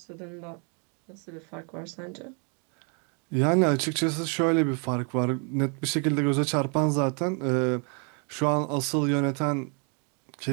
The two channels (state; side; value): quieter; left; 37.5 dB